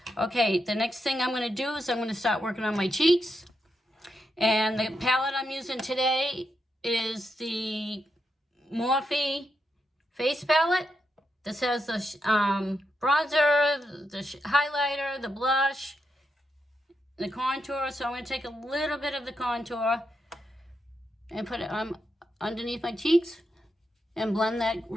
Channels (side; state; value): both; normal; correlation 0.83